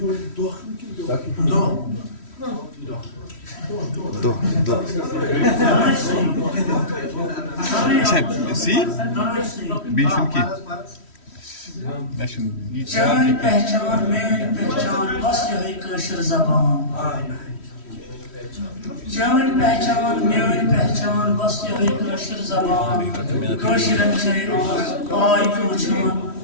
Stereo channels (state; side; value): late; right; 3.1 ms